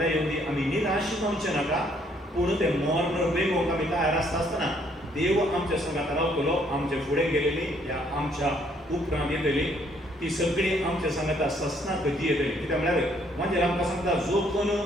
येवन दी, आमी निराश जावचें नाका. पूण तें मरण वेगोवंक आमी तयार आसता आसतना देव आमच्या संगात रावतलो. आमचे फुडें गेलेली या आमच्या उपरांत येतली ती सगळी आमच्या सांगाता ससनाक येतली. कित्याक म्हळ्यार म्हणजे आमकां सांगता, जो कोण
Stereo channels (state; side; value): normal; both; correlation 0.67